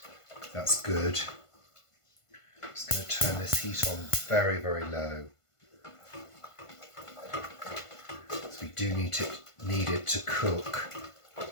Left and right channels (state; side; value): late; right; 1.5 ms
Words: That's good. I'm just going to turn this heat on very, very low. So we do need it to cook.